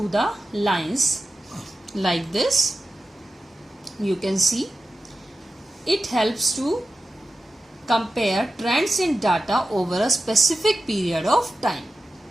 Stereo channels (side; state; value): both; normal; correlation 0.93